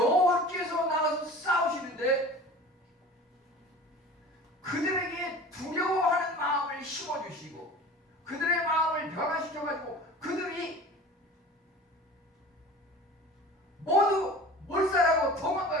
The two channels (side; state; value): both; normal; correlation 0.39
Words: 나가서 싸우시는데 그들에게 두려워하는 마음을 심어주시고 그들의 마음을 변화시켜가지고 그들이 모두 몰살하고